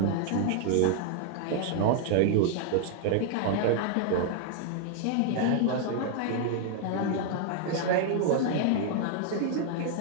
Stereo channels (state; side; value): different; both; correlation 0.00